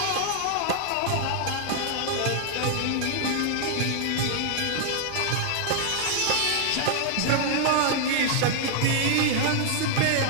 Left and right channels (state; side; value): different; both; correlation -0.01